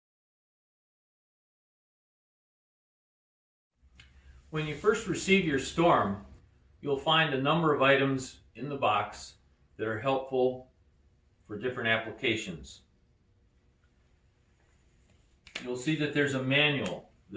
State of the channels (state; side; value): identical; both; correlation 1.00